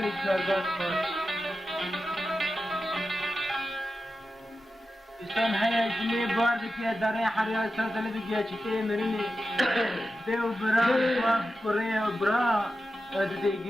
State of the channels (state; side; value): normal; both; correlation 0.92